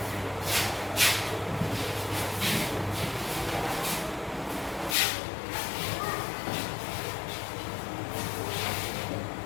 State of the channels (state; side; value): drops out; right; at 5.0 s